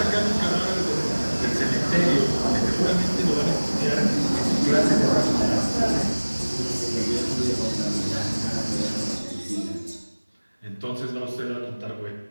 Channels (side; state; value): both; inverted; correlation -1.00